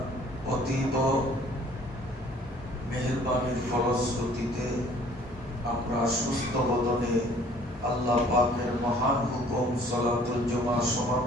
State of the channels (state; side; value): normal; both; correlation 0.55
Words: অতীব মেহেরবানির ফলশ্রুতিতে আমরা সুস্থ বদনে আল্লাহ পাকের মহান হুকুম সালাতুল জুমা